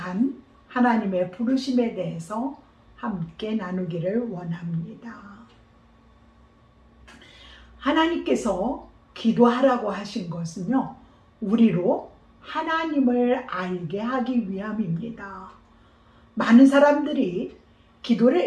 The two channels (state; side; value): identical; both; correlation 1.00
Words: 하나님의 부르심에 대해서 함께 나누기를 원합니다. 하나님께서 기도하라고 하신 것은요, 우리로 하나님을 알게 하기 위함입니다. 많은 사람들이